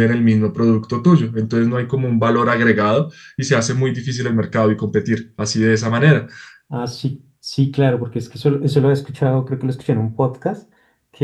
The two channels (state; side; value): identical; both; correlation 1.00